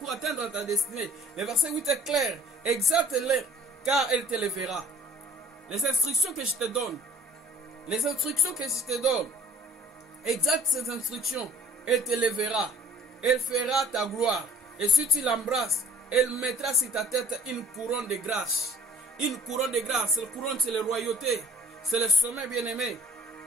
atteindre ta destinée. Le verset 8 est clair. Exalte-les, car elle t'élèvera. Les instructions que je te donne, exalte ces instructions, elle t'élèvera. Elle fera ta gloire. Et si tu l'embrasses, elle mettra sur ta tête une couronne de grâce. Une couronne de grâce. La couronne, c'est la royauté. C'est le sommet, bien-aimé.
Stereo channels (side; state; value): both; normal; correlation 0.52